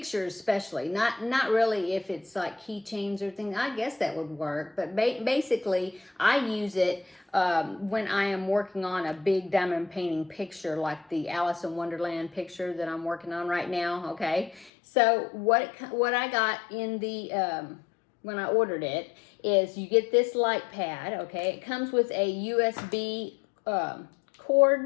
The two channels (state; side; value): drops out; right; at 14.7 s